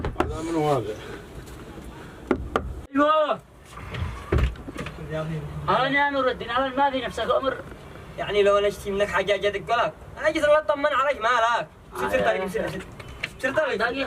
هذا من هذا؟ ايوه انا يا نور الدين، انا ما في نفسك امر، يعني لو انا اشتي منك حاجه اجي ادق لك، انا اجي اطمن عليك، مالك؟ سر طريق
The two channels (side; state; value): both; identical; correlation 1.00